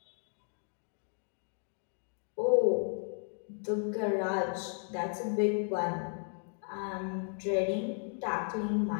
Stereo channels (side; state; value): right; silent; 55 dB below the other